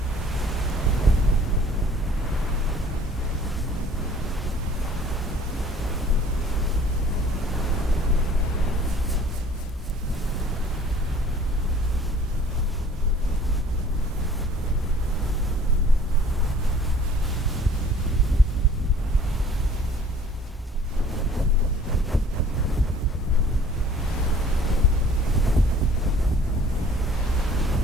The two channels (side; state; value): both; normal; correlation 0.52